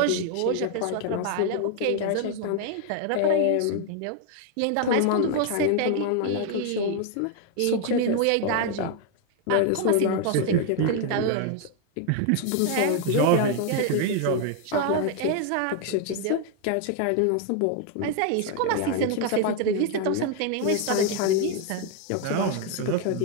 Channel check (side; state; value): both; different; correlation 0.00